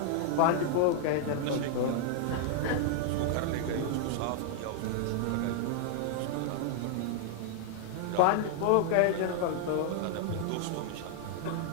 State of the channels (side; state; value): both; different; correlation 0.00